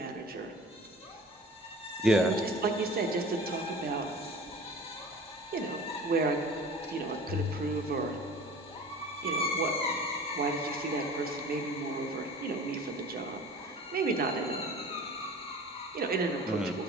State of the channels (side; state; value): both; normal; correlation 0.41